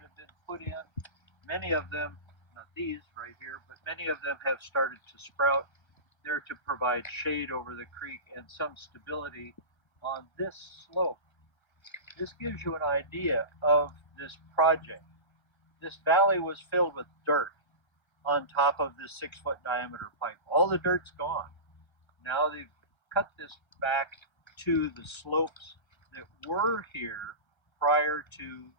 have been put in. Many of them, not these right here, but many of them have started to sprout. They're to provide shade over the creek and some stability on this slope. This gives you an idea of this project. This valley was filled with dirt on top of this 6-foot diameter pipe. All the dirt's gone. Now they've cut this back to the slopes that were here prior to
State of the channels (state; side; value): late; right; 1.3 ms